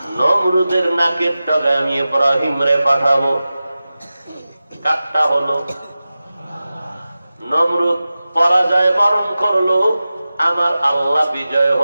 নমরুদের নাকের ডগায় আমি ইব্রাহিম রে পাঠাবো। কাটটা হলো, নমরুদ পরাজয় বরণ করলো, আমার আল্লাহ বিজয়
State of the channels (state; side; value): inverted; both; correlation -0.95